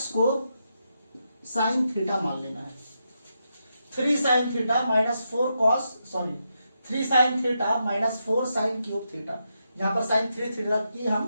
को साइन थीटा मान लेना है। 3 sine theta minus 3 sine theta minus 4 sine cube theta. यहां पर साइन 3 थीटा की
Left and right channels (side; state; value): both; inverted; correlation -0.84